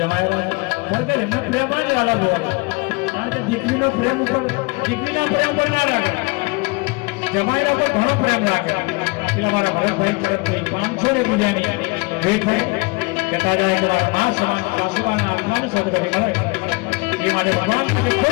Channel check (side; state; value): right; quieter; 27.9 dB